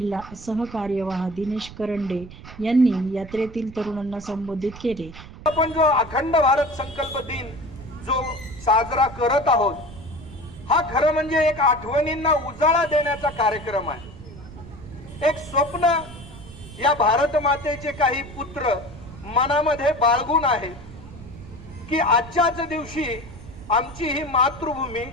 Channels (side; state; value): right; noise; rumble, 16 dB below the sound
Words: सहकार्यवाह दिनेश करंडे यांनी यात्रेतील तरुणांना संबोधित केले. आपण जो अखंड भारत संकल्प दिन जो साजरा करत आहोत, हा खरं म्हणजे एक आठवणींना उजाळा देण्याचा कार्यक्रम आहे. एक स्वप्न या भारत मातेचे काही पुत्र मनामध्ये बाळगून आहेत की आजच्याच दिवशी आमची ही मातृभूमी